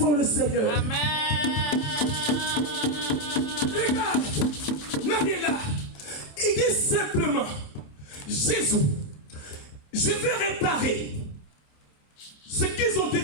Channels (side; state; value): right; late; 27 ms